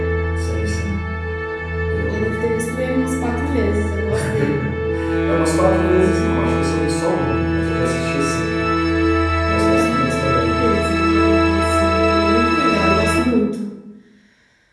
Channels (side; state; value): both; identical; correlation 1.00